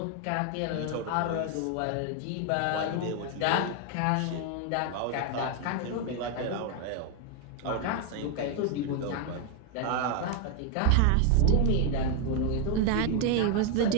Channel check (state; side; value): different; both; correlation 0.01